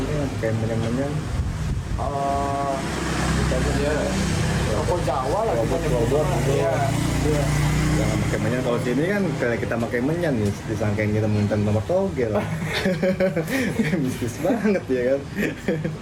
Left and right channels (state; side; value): identical; both; correlation 1.00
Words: kayak menyang-menyang. Ya, rokok Jawa lah kita Rokok nyebutnya. robot. Iya. Iya. Jangan pakai menyan, kalau sini kan kayak kita pakai menyan nih disangkain kita muntan nomor togel. Bisnis banget ya kan.